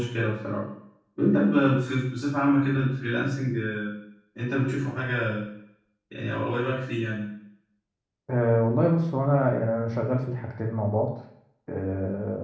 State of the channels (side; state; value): both; identical; correlation 1.00